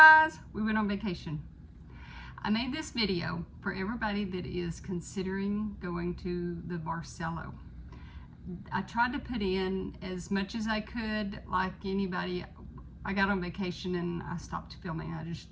We went on vacation. I made this video for everybody that is considering going to the Barceló. I tried to put in as much as I could, like anybody. I got on vacation and I stopped filming.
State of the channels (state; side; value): identical; both; correlation 1.00